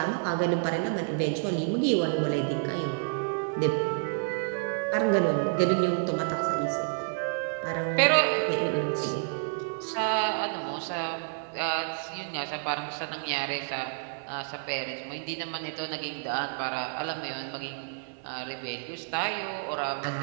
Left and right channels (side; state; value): left; silent; 58 dB below the other